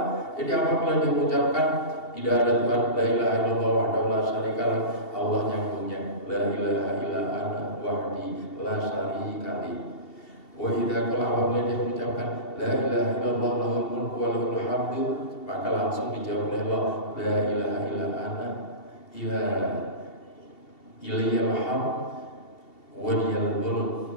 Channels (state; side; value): late; right; 2.7 ms